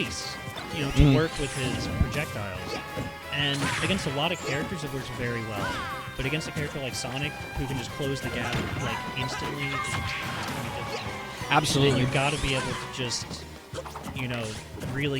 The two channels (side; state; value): both; identical; correlation 1.00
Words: you know, to work with his projectiles. And against a lot of characters, it works very well. But against a character like Sonic, who can just close the gap like instantly, it's gonna be difficult. Absolutely. And you got to be able to just, you know, really